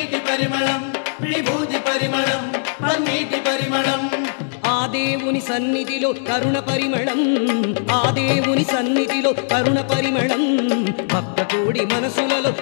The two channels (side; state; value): right; silent; 66 dB below the other